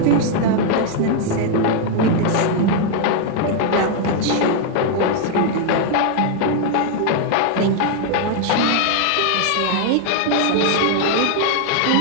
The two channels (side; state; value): both; different; correlation 0.00